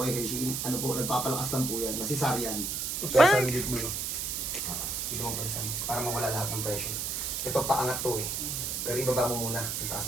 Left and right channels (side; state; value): right; noise; hiss, 2 dB below the sound